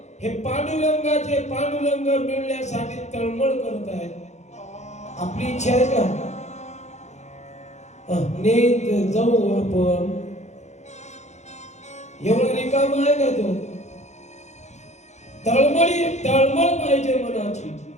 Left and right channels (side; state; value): right; late; 0.33 ms